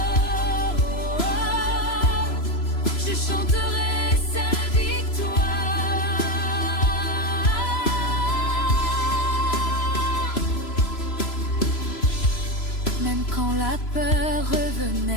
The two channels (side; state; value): right; late; 3.0 ms